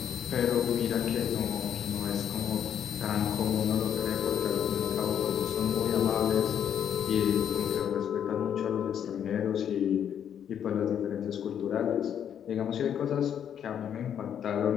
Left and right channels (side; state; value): right; quieter; 9.0 dB